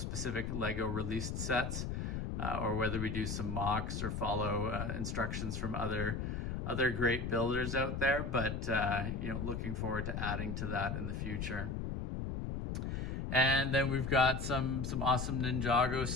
Lego released sets, or whether we do some mocks or follow instructions from other great builders out there. But looking forward to adding to that in the future. And then we've got some awesome Ninjago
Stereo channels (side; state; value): left; noise; rumble, 3 dB below the sound